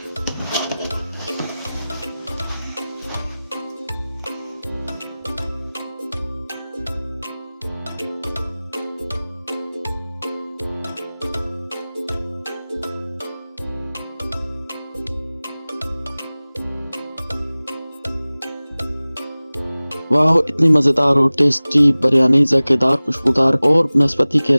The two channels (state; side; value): inverted; both; correlation -0.99